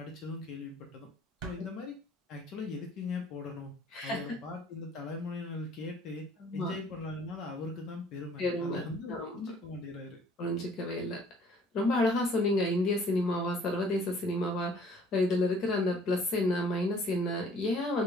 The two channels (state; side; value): normal; both; correlation 0.57